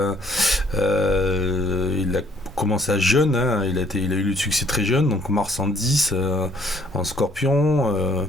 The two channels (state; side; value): normal; both; correlation 0.62